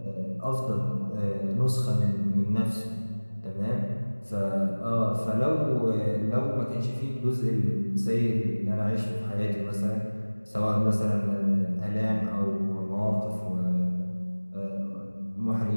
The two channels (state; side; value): inverted; both; correlation -1.00